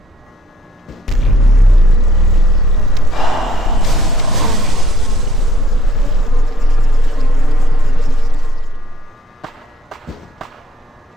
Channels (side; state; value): both; normal; correlation 0.62